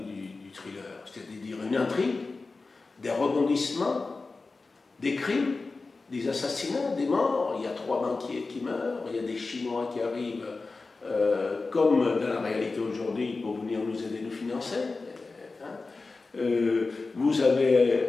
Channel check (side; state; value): right; quieter; 3.8 dB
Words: thriller, c'est-à-dire une intrigue, des rebondissements, des crimes, des assassinats, des morts. Il y a 3 banquiers qui meurent, il y a des Chinois qui arrivent, comme dans la réalité aujourd'hui, pour venir nous aider, nous financer. Vous